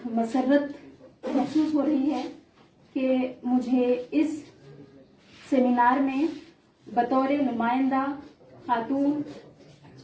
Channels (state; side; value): identical; both; correlation 1.00